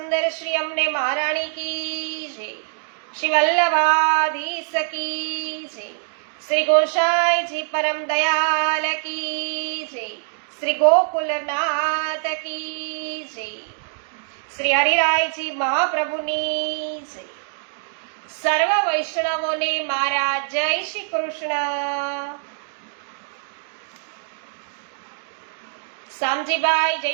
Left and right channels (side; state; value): left; silent; digital silence